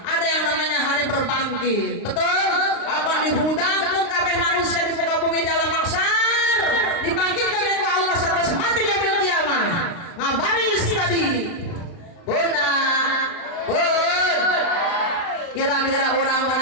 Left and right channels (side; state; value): right; late; 35 ms